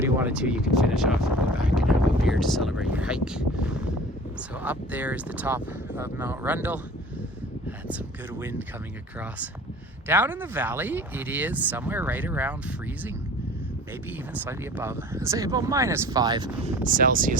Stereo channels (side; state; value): both; normal; correlation 0.43